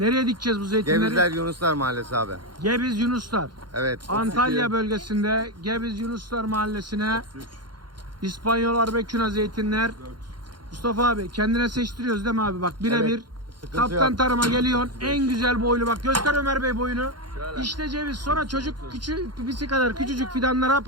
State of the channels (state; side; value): late; left; 0.71 ms